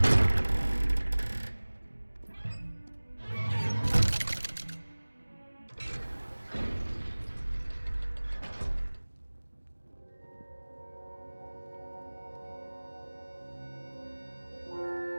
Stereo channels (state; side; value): inverted; both; correlation -1.00